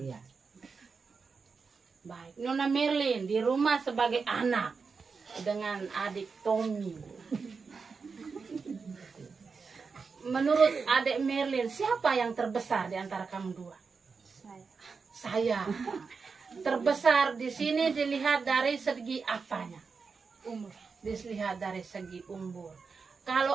iya. Baik, Nona Merlin di rumah sebagai anak dengan adik Tommy. Menurut adik Merlin, siapa yang terbesar di antara kamu dua? Saya. Terbesar di sini dilihat dari segi apanya? Umur. Dilihat dari segi umur.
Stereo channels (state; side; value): quieter; left; 5.0 dB